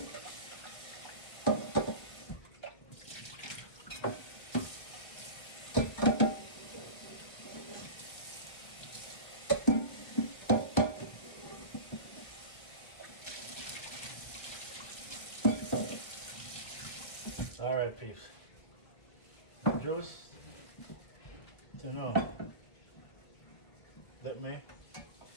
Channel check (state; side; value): late; right; 1.7 ms